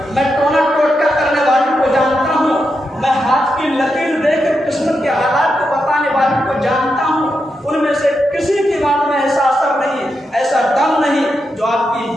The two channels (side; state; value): both; normal; correlation 0.85